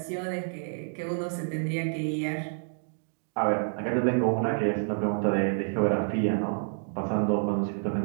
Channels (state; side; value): silent; left; digital silence